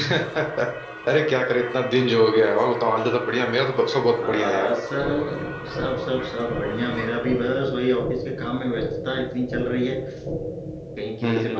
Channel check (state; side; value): identical; both; correlation 1.00